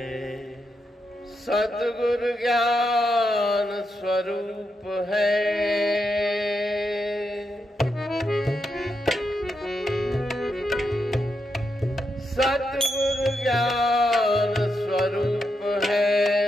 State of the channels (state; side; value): normal; both; correlation 0.84